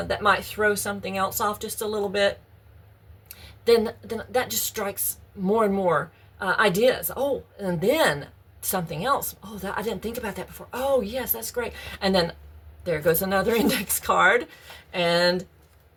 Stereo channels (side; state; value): both; identical; correlation 1.00